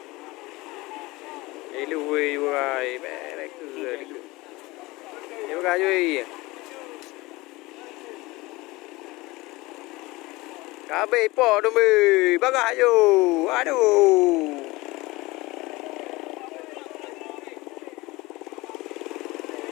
Lui hoài bé này cười đi. Em gà duy. Cá bê bỏ đâu mì, bác gà dù, aduh.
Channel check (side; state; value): right; quieter; 21.6 dB